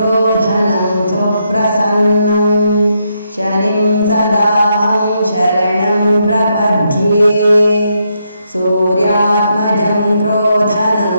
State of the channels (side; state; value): both; inverted; correlation -0.79